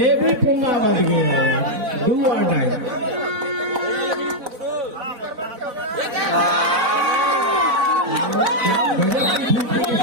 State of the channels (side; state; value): left; late; 4.1 ms